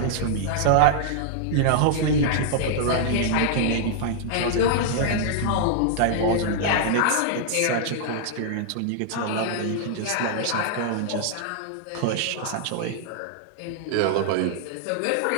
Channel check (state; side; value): different; both; correlation -0.01